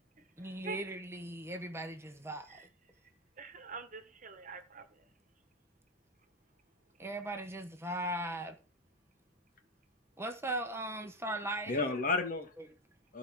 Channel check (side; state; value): both; normal; correlation 0.11